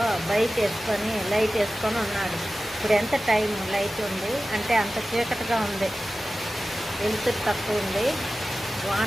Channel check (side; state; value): both; normal; correlation 0.95